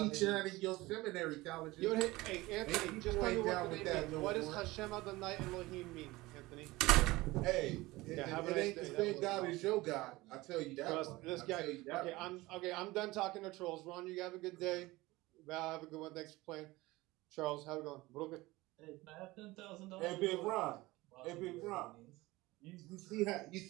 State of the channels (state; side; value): quieter; left; 20.1 dB